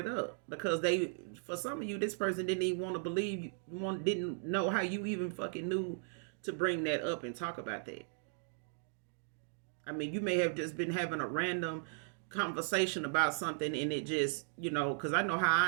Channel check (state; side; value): silent; left; digital silence